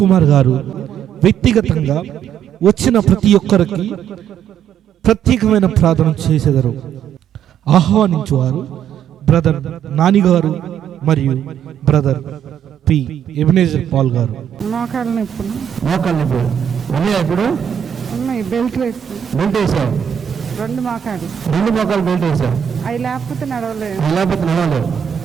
కుమార్ గారు వ్యక్తిగతంగా వచ్చిన ప్రతి ఒక్కరికి ప్రత్యేకమైన ప్రార్థన చేసేదారు. ఆహ్వానించువారు బ్రదర్ నాని గారు మరియు బ్రదర్ పి ఎబినేజర్ పాల్ గారు. మోకాళ్ళ నొప్పులు ఉన్నాయా ఇప్పుడు? ఉన్నాయి. బెల్ట్ వేసావు? 2 మోకాలు బెల్ట్ వేసావు? అవి లేకపోతే నడవలేదు.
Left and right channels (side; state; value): left; quieter; 9.2 dB